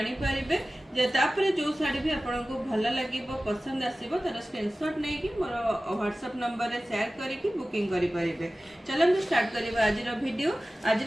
परिबे। तापर जो शाढ़ी भी आपको भल लगे पसंद आसो तार स्क्रीनशॉट नहीं कि मोर व्हाट्सएप नंबर रे शेयर करके बुकिंग करि परिबे। चलନ୍ତୁ स्टार्ट करिबा आज वीडियो। आज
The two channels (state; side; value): normal; both; correlation 0.96